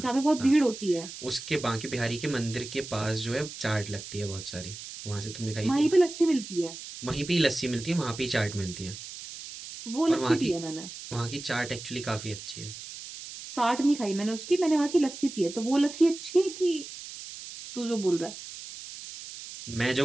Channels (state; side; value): noise; right; hiss, 12 dB below the sound